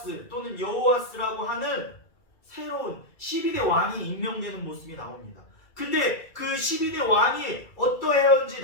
또는 여호아스라고 하는 새로운 12대 왕이 임명되는 모습이 나옵니다. 근데 그 12대 왕이 어떠했는지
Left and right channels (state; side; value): late; right; 2.3 ms